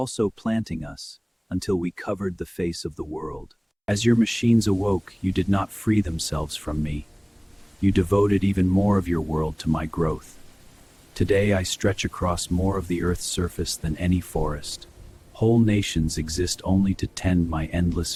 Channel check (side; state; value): both; identical; correlation 1.00